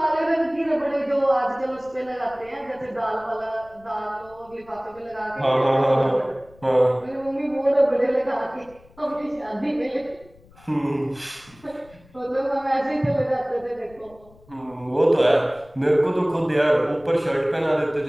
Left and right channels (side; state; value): left; noise; rumble, 26 dB below the sound